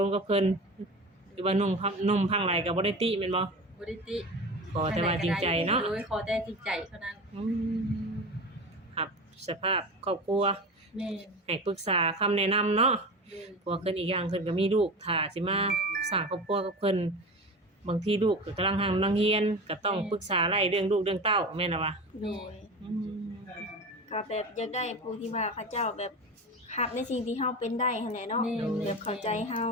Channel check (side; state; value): both; normal; correlation 0.29